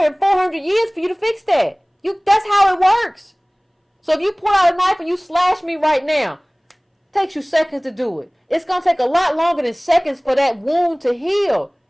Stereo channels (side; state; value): both; identical; correlation 1.00